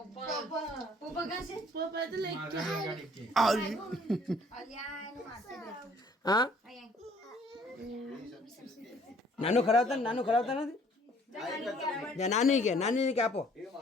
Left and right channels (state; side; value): normal; both; correlation 0.58